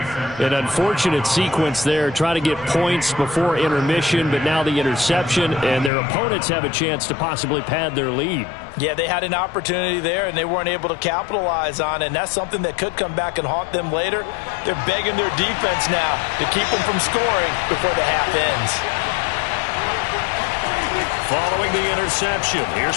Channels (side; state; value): right; drops out; at 5.9 s